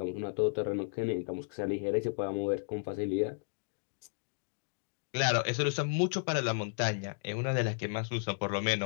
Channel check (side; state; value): right; silent; digital silence